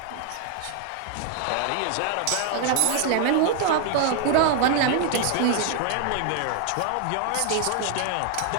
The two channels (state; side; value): different; both; correlation 0.00